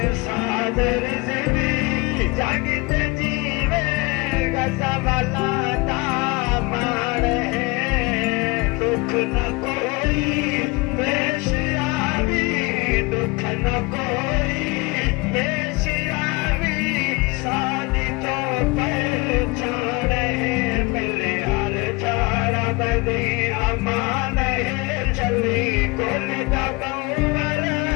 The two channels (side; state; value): right; quieter; 25.8 dB